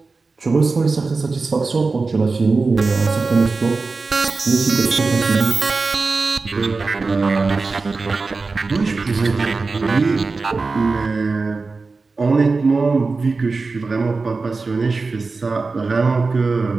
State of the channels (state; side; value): quieter; left; 4.0 dB